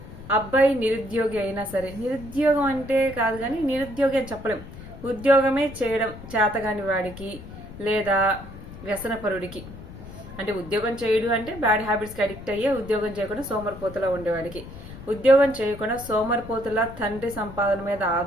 అబ్బాయి నిరుద్యోగి అయినా సరే, నిరుద్యోగం అంటే కాదు కానీ నిరుద్యోగి అని చెప్పలేం, ఉద్యోగమే చేయడం చేతగాని వాడికి లేదా వ్యసనపరుడికి, అంటే ఉద్యోగం చేయడు అంటే బ్యాడ్ హ్యాబిట్స్కి అడిక్ట్ అయ్యే ఉద్యోగం చేయకుండా సోమరిపోతులా ఉండేవాడికి, ఉద్యోగం చేయకుండా సోమరిపోతులా తండ్రి సంపాదన మీద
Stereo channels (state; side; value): noise; left; rumble, 14 dB below the sound